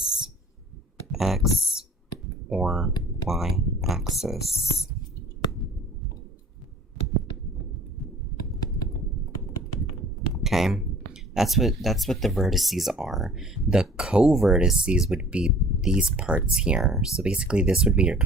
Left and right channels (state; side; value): normal; both; correlation 0.49